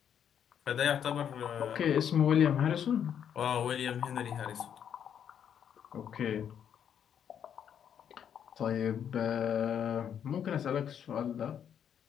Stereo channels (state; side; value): quieter; right; 8.7 dB